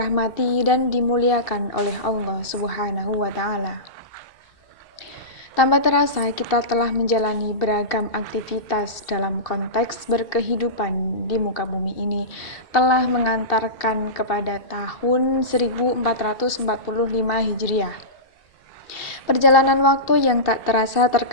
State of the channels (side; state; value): right; late; 2.7 ms